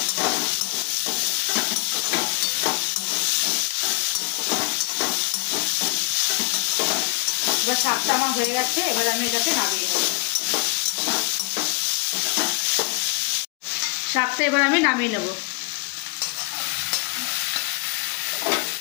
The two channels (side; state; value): right; quieter; 30.0 dB